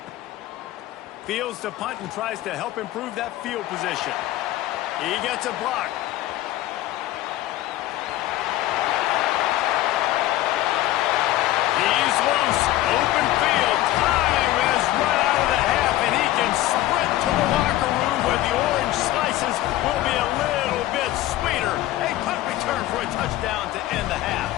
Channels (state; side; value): quieter; right; 15.2 dB